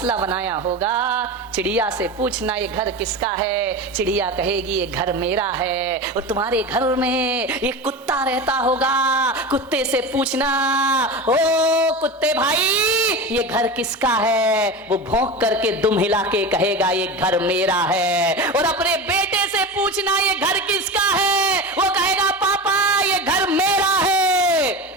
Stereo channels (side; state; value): both; normal; correlation 0.26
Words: बनाया होगा, चिड़िया से पूछना ये घर किसका है। चिड़िया कहेगी ये घर मेरा है। और तुम्हारे घर में एक कुत्ता रहता होगा, कुत्ते से पूछना ओ कुत्ते भाई ये घर किसका है। वो भौंक करके दुम हिला के कहेगा ये घर मेरा है। और अपने बेटे से पूछना ये घर किसका है, वो कहेगा पापा ये घर मेरा है।